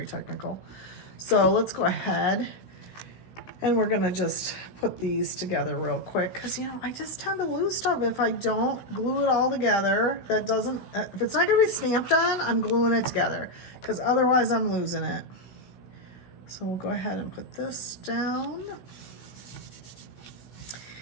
technical. So let's go ahead and we're gonna just put these together real quick because, you know, I just tend to lose stuff if I don't glue it all together. That doesn't, if it's not gonna be stamped on, I'm gluing it together because otherwise I'm losing it. So we'll go ahead and put this down.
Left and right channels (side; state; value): right; late; 17 ms